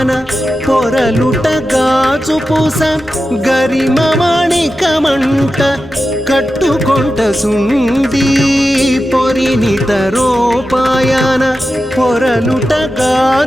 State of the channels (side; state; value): both; normal; correlation 0.92